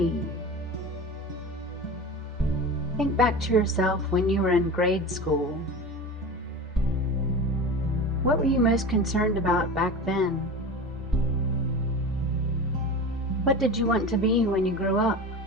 Think back to yourself when you were in grade school. What were you most concerned about back then? What did you want to be when you grew up?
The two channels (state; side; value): normal; both; correlation 0.31